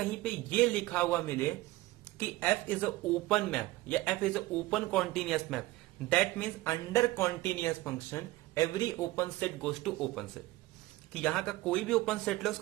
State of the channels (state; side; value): quieter; left; 18.5 dB